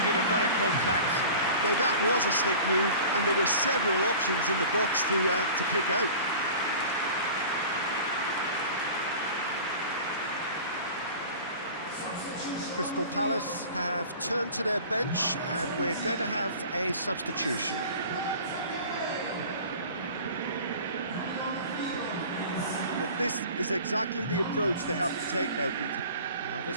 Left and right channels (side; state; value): both; inverted; correlation -0.40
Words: a better contact. Now that was a slick move, and there were several options in the box to pick out. Crystal Palace have turned to their bench, and we're going to have a substitution. But this is exactly the approach they have to take now, Peter. Well,